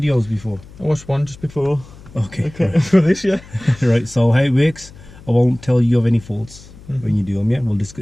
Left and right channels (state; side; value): noise; left; hum, 20 dB below the sound